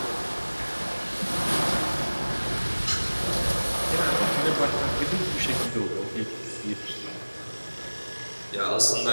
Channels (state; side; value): inverted; both; correlation -1.00